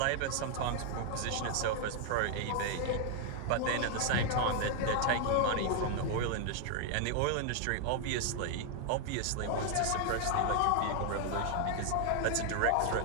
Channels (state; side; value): different; both; correlation 0.00